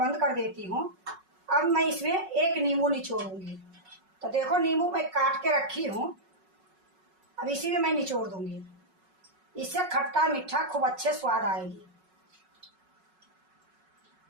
कर देती हूँ। अब मैं इसमें 1 नींबू निचोड़ूंगी। तो देखो नींबू मैं काट के रखी हूँ, अब इसी में मैं निचोड़ दूंगी। इससे खट्टा मीठा खूब अच्छे स्वाद आएगी।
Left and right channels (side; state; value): left; late; 5.4 ms